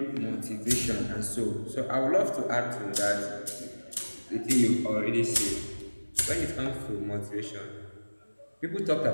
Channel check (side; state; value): both; inverted; correlation -1.00